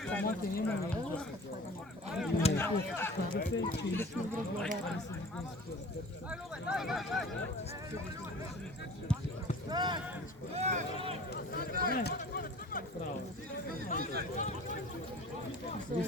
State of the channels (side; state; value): both; normal; correlation 0.43